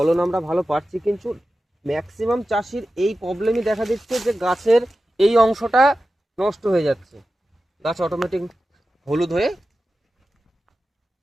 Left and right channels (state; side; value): normal; both; correlation 0.93